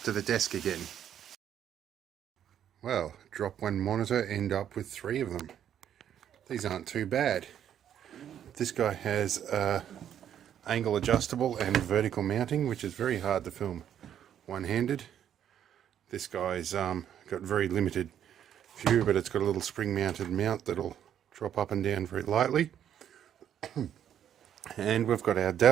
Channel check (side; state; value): left; quieter; 9.8 dB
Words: to the desk again. Well, drop one monitor, end up with 3 of them. These aren't too bad. This guy has angle adjustable and vertical mounting, which is very hard to film one-handed. This guy's got very limited view, but it's got a little spring-mounted mount that'll drop up and down very lightly. And we've got our